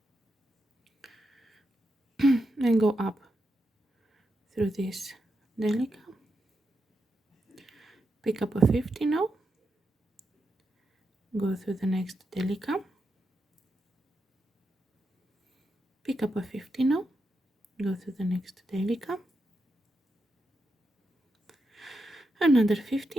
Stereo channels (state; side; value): normal; both; correlation 0.86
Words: and go up through this Delica, pick up a 15, go through the next Delica, pick up a 15, go through the next Delica, another